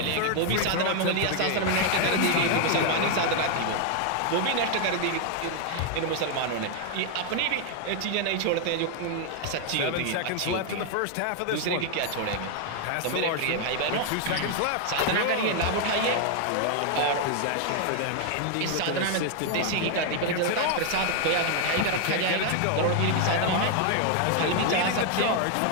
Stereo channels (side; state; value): both; different; correlation 0.01